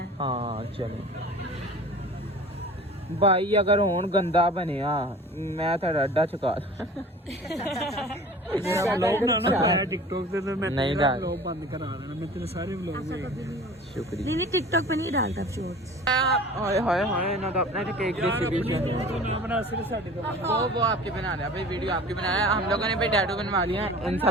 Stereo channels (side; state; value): both; normal; correlation 0.42